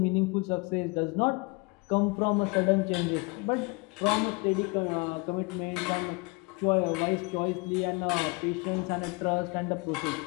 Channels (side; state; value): right; quieter; 28.2 dB